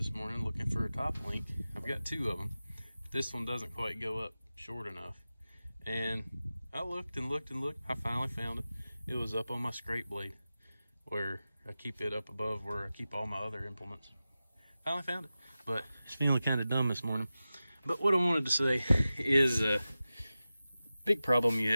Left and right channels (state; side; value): inverted; both; correlation -0.95